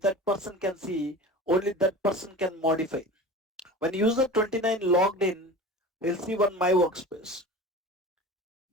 person can see, only that person can modify. When user 29 logged in, he'll see one my workspace.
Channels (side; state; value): both; normal; correlation 0.36